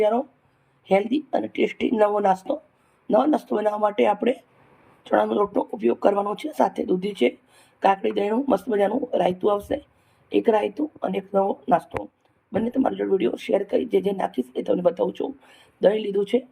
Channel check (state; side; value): identical; both; correlation 1.00